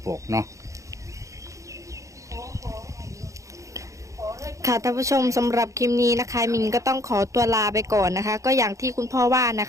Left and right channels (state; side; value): late; left; 0.15 ms